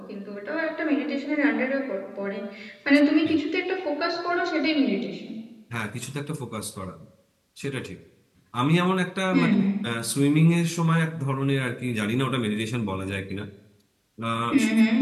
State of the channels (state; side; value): identical; both; correlation 1.00